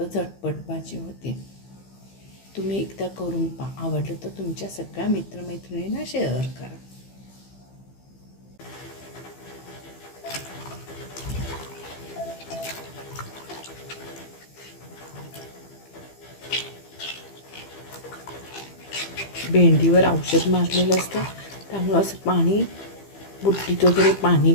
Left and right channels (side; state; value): right; late; 15 ms